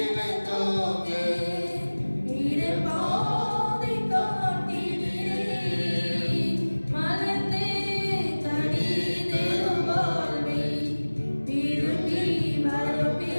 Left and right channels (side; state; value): both; inverted; correlation -1.00